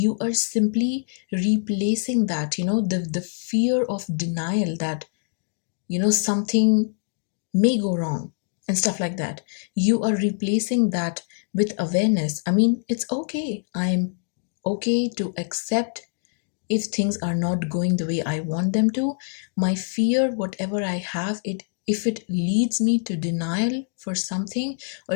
are simply replacing that, the fear of denial, that something may go wrong and stuff like that. You are replacing that with awareness. I mean, it's okay. I'm okay to accept if things are not going the way I want them to. My fear, whatever I have, it if it leads me to denial for something, or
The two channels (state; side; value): silent; right; digital silence